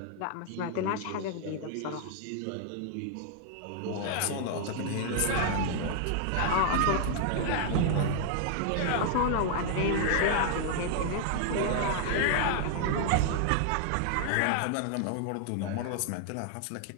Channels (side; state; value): both; different; correlation 0.00